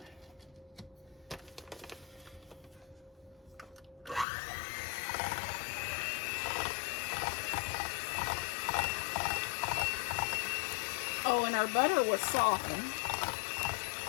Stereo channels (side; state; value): right; drops out; at 4.2 s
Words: Oh, and our butter was softened.